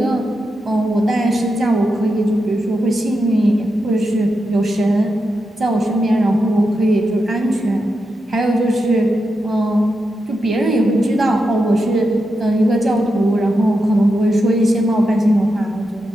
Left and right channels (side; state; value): both; normal; correlation 0.87